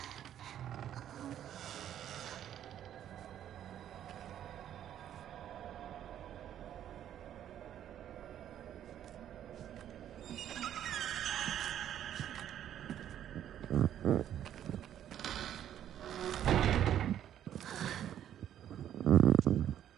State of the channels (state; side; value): quieter; left; 10.7 dB